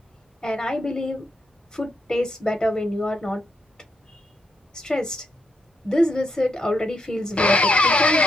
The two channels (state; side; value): normal; both; correlation 0.80